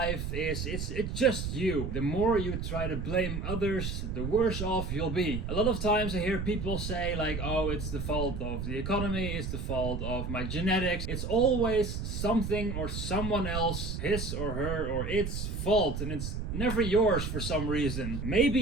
is it's just you. The more you try to blame others, the worse off you'll be. A lot of times I hear people say like, oh, it's the fault of the economy, it's the fault of my genetics. It's always something or someone else, his or her or its fault, and it's never yours for some reason.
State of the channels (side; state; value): right; noise; rumble, 4 dB below the sound